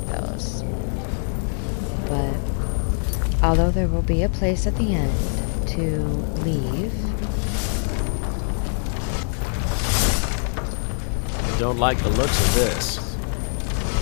although there will be a place at the end to leave. I don't like the looks of this.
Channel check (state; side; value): silent; right; digital silence